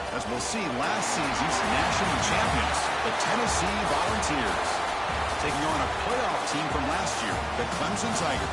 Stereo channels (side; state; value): both; identical; correlation 1.00